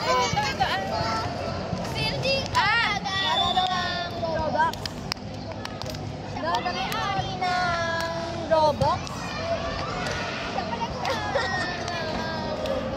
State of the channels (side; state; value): both; identical; correlation 1.00